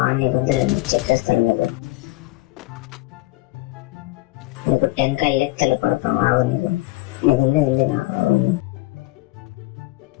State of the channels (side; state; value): right; quieter; 19.7 dB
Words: నీకు చెప్పేస్తాను. నీకు టెంకాయ లెక్కలు పడతాం. ఆగు నీకు ఉంది